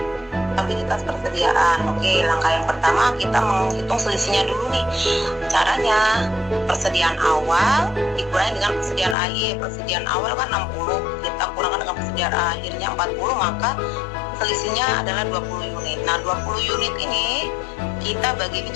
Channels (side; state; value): right; drops out; at 9.2 s